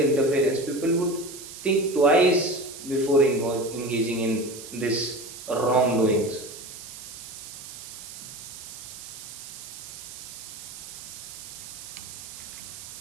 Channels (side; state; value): right; noise; hiss, 12 dB below the sound